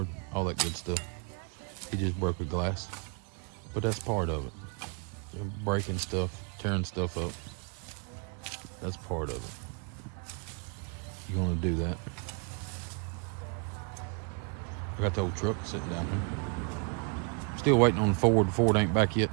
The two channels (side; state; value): left; quieter; 35.3 dB